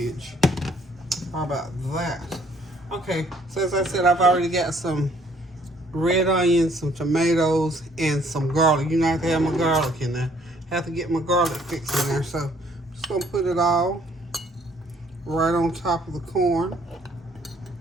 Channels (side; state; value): both; normal; correlation 0.62